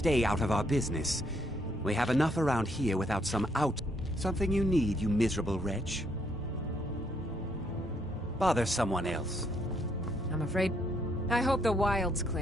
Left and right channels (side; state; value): both; normal; correlation 0.72